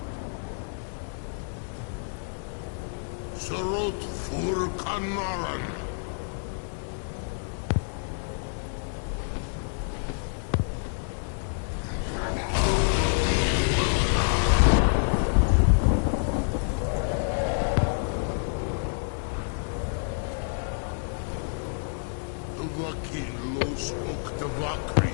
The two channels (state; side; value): silent; right; digital silence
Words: Sarot fur Kanaran.